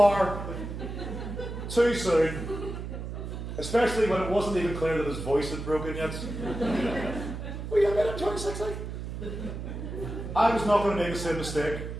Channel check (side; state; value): right; noise; hum, 7 dB below the sound